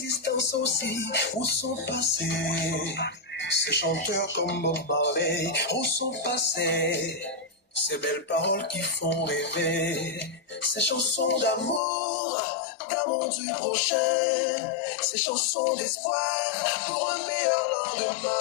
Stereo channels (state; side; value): drops out; right; at 11.8 s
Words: aussi. Où sont passés ces chanteurs comme Bob Marley? Où sont passés ces belles paroles qui font rêver? Ces chansons d'amour du prochain, ces chansons d'espoir pour un meilleur